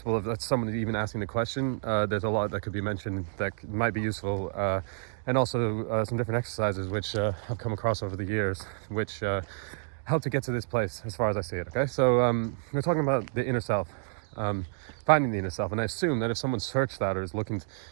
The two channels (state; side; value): silent; left; digital silence